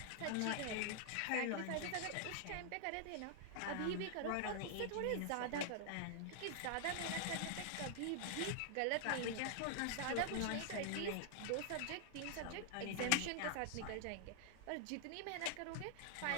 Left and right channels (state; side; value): different; both; correlation 0.00